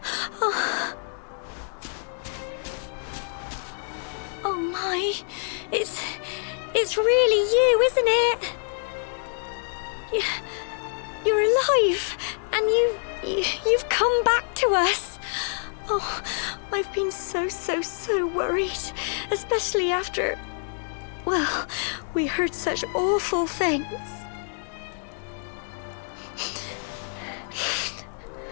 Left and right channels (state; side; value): silent; right; digital silence